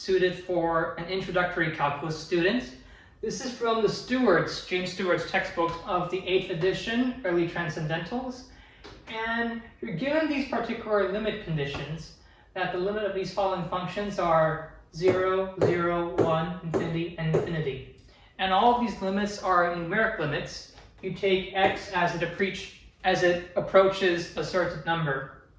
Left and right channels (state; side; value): identical; both; correlation 1.00